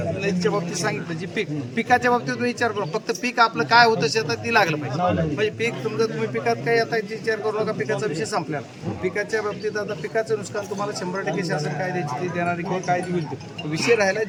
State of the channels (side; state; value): both; identical; correlation 1.00